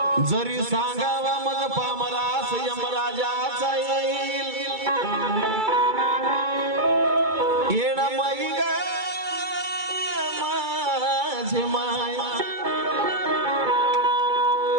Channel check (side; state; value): left; late; 2.3 ms